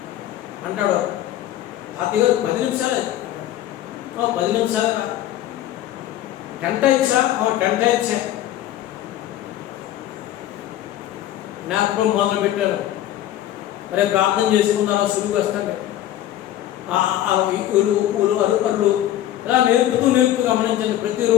అంటాడు. తాతయ్య గారు 10 నిమిషాలు 10 నిమిషాలు 10 టైమ్స్ 10 టైమ్స్ నాకు మొదలు పెట్టారు. మరి ప్రార్థన చేసుకున్నారా, సులువు వస్తాండి అరుకర్లు ఇలా నేర్పుతూ గమనించండి.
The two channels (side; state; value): right; quieter; 12.9 dB